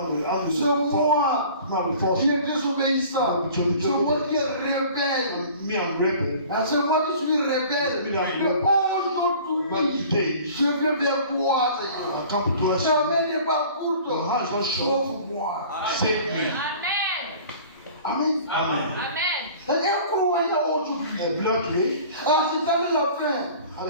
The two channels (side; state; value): both; inverted; correlation -0.46